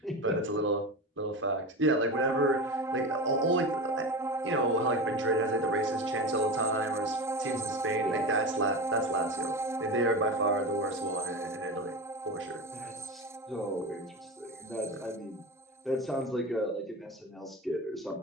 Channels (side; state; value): both; normal; correlation 0.24